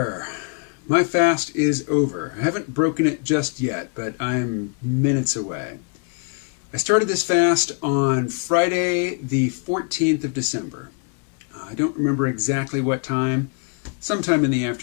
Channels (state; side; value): quieter; right; 35.3 dB